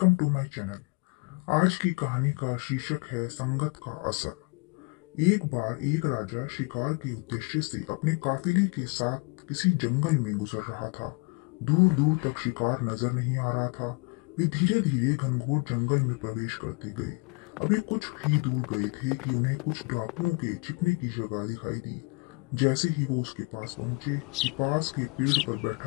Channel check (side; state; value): right; quieter; 29.9 dB